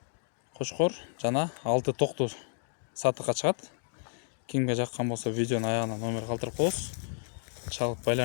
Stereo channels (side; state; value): right; silent; digital silence